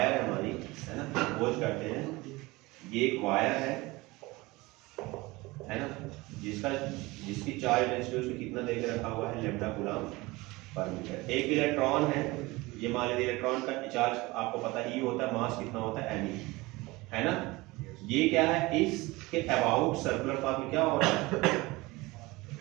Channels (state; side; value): quieter; left; 21.9 dB